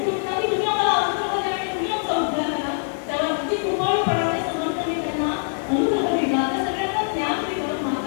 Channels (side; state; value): right; silent; 63 dB below the other